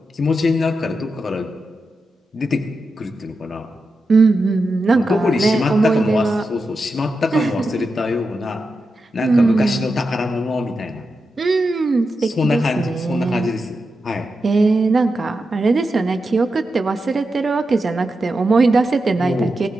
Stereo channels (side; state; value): both; normal; correlation 0.89